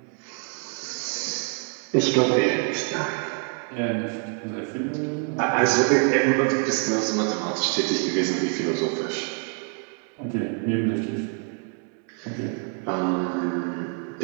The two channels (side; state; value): left; quieter; 39.5 dB